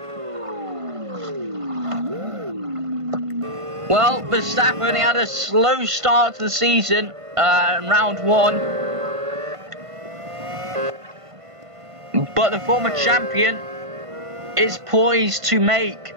Well, Verstappen, he had a slow start to the season in round 1. But the former champion is poised to make,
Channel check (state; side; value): late; left; 1.5 ms